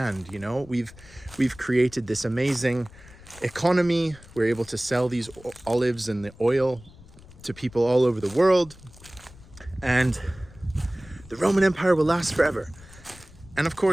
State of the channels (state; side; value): noise; left; rumble, 21 dB below the sound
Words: you know? We've created this amazing economy. We're able to sell these olives and the oil to people all over the world. And the Roman Empire will last forever. And of